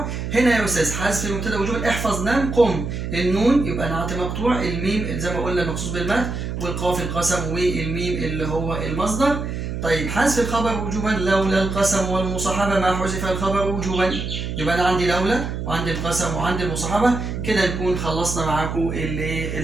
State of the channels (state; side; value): noise; right; hum, 4 dB below the sound